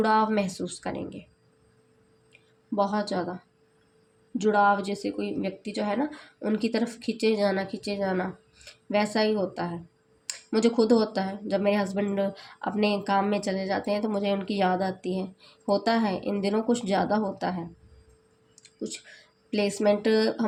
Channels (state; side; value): identical; both; correlation 1.00